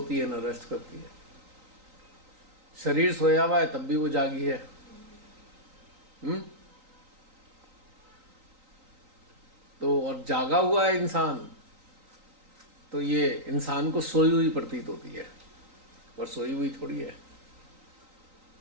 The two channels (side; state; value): left; late; 3.9 ms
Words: है ना रेस्ट करती है। शरीर सोया हुआ है तब भी वो जागी है। तो और जागा हुआ है इंसान, तो ये इंसान को सोई हुई प्रतीत होती है, और सोई हुई थोड़ी है।